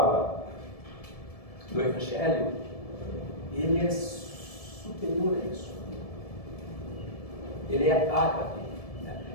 do Evangelho, ele é superior a isso. Ele é ágape.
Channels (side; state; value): right; late; 1.7 ms